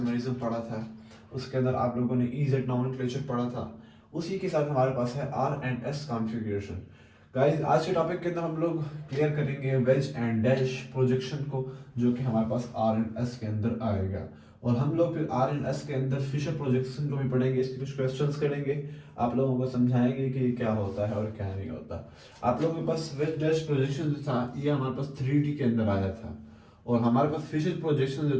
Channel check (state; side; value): identical; both; correlation 1.00